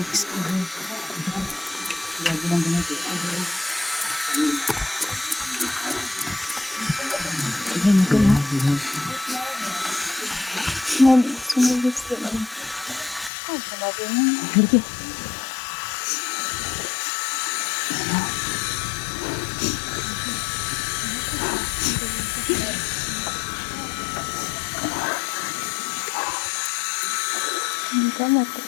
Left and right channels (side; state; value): right; drops out; at 13.3 s